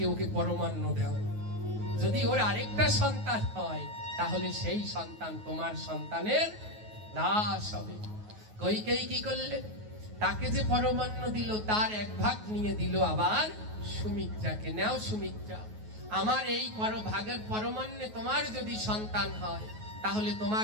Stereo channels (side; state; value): left; late; 9.4 ms